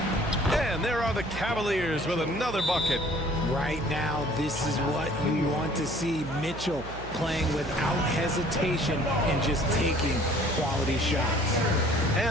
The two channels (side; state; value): right; noise; hum, 12 dB below the sound